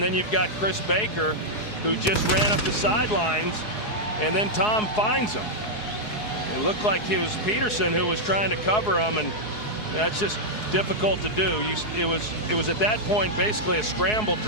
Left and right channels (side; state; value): right; late; 4.7 ms